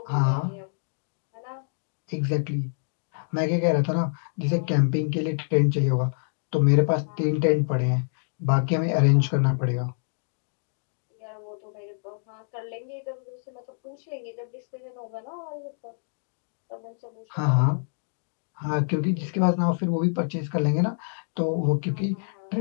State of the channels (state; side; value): silent; right; digital silence